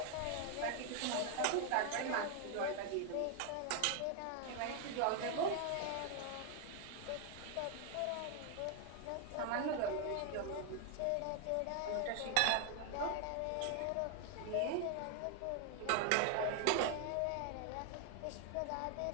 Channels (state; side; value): different; both; correlation 0.00